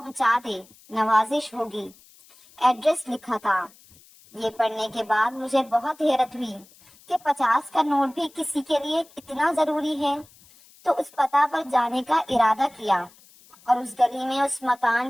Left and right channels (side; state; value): left; noise; hiss, 26 dB below the sound